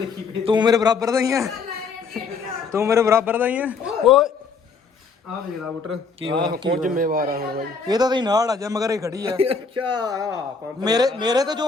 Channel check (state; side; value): quieter; right; 5.0 dB